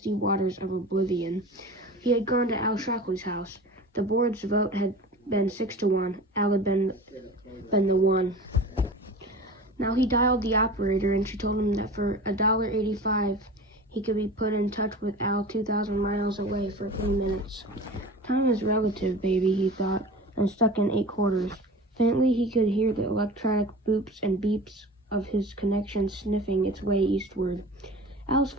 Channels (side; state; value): both; normal; correlation 0.36